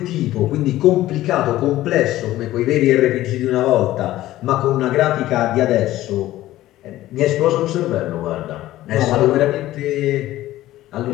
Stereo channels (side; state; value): right; quieter; 15.2 dB